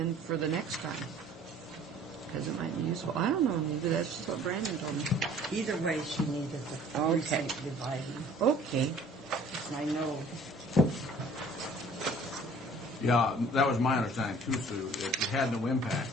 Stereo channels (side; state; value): both; normal; correlation 0.52